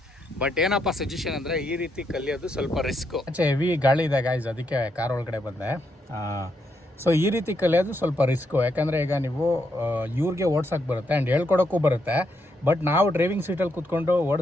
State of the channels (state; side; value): normal; both; correlation 0.79